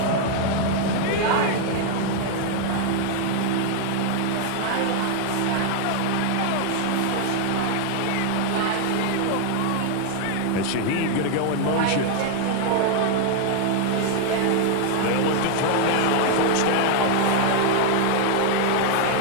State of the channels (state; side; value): different; both; correlation 0.00